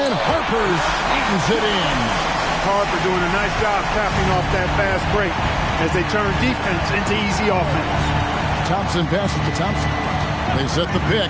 Harper eatens it in. Harper doing a nice job tapping off that fast break as they turn defense into easy offense. Thompson passes to Thompson. They set the pick.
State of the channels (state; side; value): identical; both; correlation 1.00